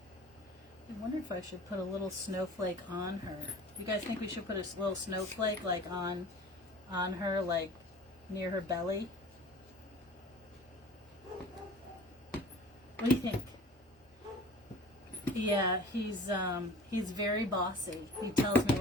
I wonder if I should put a little snowflake on her. You guys think we should put a little snowflake like on her, like near her belly? What do you think? Yeah, he's very bossy. He tells me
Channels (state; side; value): normal; both; correlation 0.43